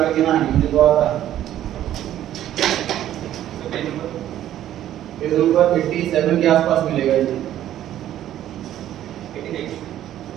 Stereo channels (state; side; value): quieter; left; 12.1 dB